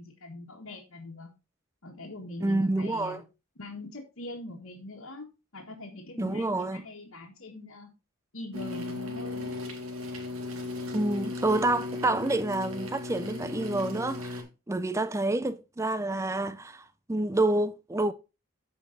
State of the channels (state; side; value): normal; both; correlation 0.67